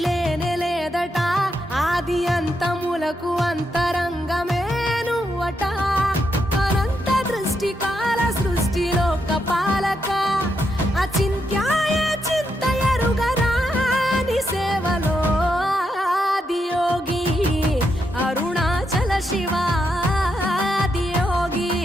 లేనే లేదట ఆది అంతములకు అంతరంగమే నువ్వట అనంత దృష్టి కాల సృష్టిలోక పాలక అచింత్యాయ చింతయరుగరాని సేవలో ఆదియోగి అరుణాచల శివాదియోగి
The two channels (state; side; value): normal; both; correlation 0.81